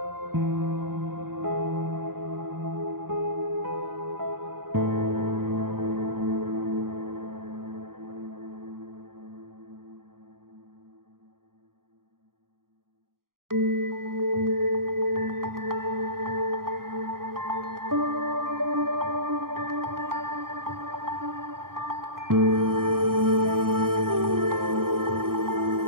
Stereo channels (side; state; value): left; late; 0.92 ms